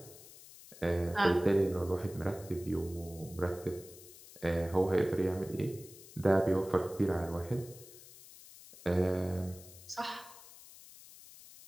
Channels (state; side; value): noise; left; hiss, 19 dB below the sound